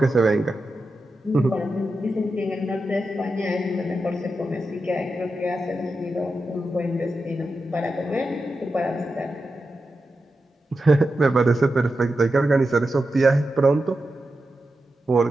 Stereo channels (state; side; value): normal; both; correlation 0.90